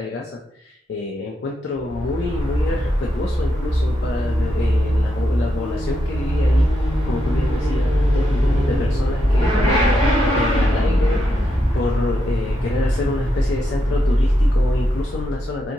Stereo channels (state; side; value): normal; both; correlation 0.83